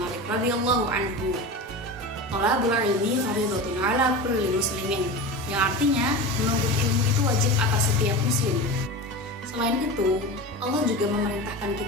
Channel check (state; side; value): normal; both; correlation 0.28